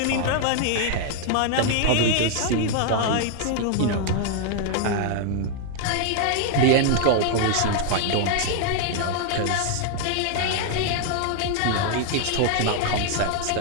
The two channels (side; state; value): both; different; correlation 0.00